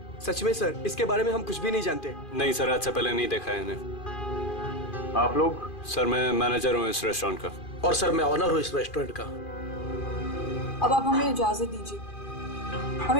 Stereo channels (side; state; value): right; late; 2.4 ms